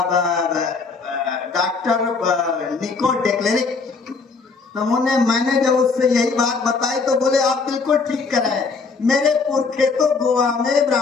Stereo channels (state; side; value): quieter; right; 4.6 dB